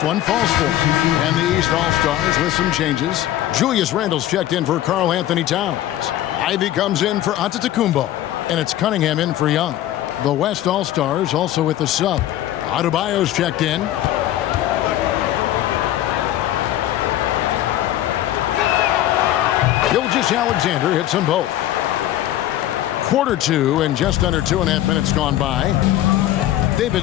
one falls for him. And the East All-Stars with some changes. Julius Randle's checked in for Karl Anthony Towns. Ivy comes in for Antetokounmpo. And it's Cunningham in for Young. The West All-Stars also with the sub. Adebayo's checked in. Gilgeous-Alexander hits them both. Quarter two and just under 2.5 minutes gone by. They've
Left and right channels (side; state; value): right; quieter; 13.3 dB